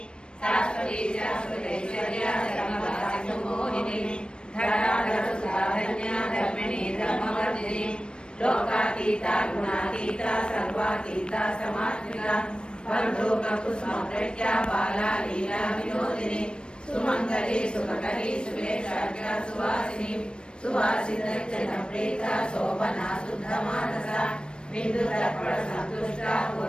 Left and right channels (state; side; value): late; right; 0.054 ms